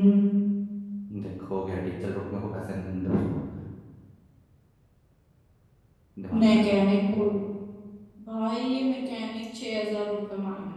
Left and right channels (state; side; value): identical; both; correlation 1.00